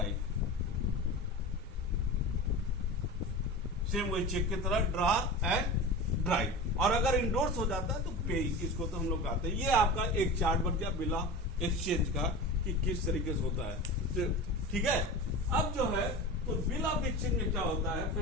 सेम वही चेक की तरह ड्रॉर एंड ड्राई। और अगर इंडोर्स हो जाता है तो पे, इसको तो हम लोग कहते हैं। ये आपका एक चार्ट बन गया बिल ऑफ एक्सचेंज का, कि किस तरीके से होता है, ठीक है। अब जो है तो बिल ऑफ एक्सचेंज में क्या होता है,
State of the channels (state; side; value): normal; both; correlation 0.30